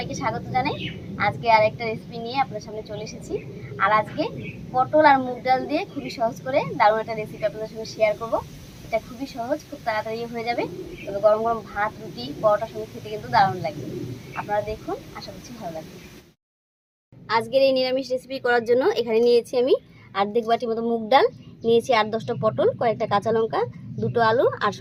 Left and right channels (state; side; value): identical; both; correlation 1.00